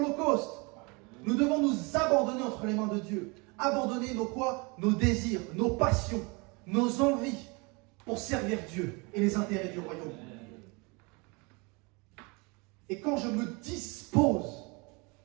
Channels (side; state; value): left; quieter; 28.9 dB